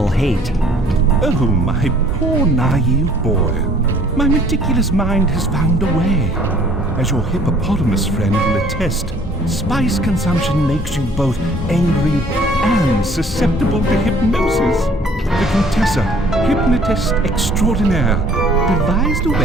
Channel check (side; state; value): both; normal; correlation 0.56